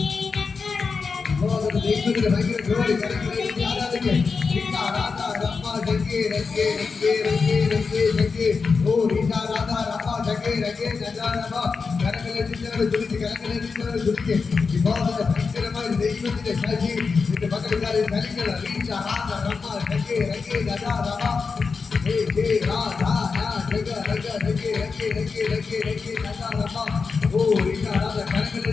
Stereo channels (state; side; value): quieter; right; 4.9 dB